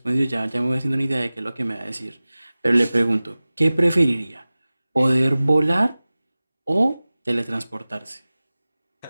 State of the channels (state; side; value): inverted; both; correlation -0.98